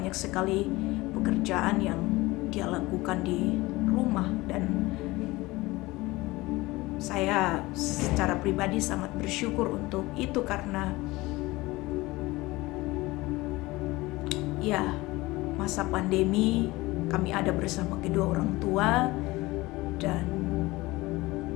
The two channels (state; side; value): quieter; right; 20.6 dB